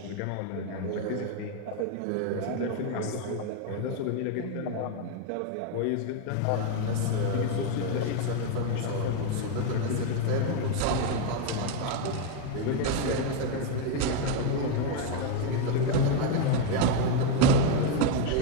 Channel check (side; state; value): both; different; correlation 0.01